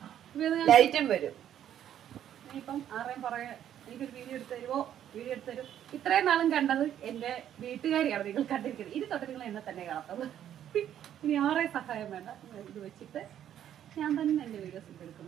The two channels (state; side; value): quieter; left; 10.5 dB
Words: ലൈറ്റും വരും. ഇപ്പം ആരെയും പറയാ എനിക്കൊരു വീഡിയോ എടുത്ത് തരുമോ, വീഡിയോ എടുത്ത് തരും. ഇത്രയും നാളും കണ്ടത് എന്റെ വീട്ടുകാരിയാണ് നിങ്ങൾ കണ്ടിരിക്കുന്നത്. ഇനി തൊട്ട് നിങ്ങൾ എന്നെ തന്നെ കാണത്തുള്ളൂ. ഇനി ആരെയും സഹായം വേണ്ട, ഇത് വെച്ചിട്ട് ഞാൻ തന്നെ എന്റെ വീഡിയോസ്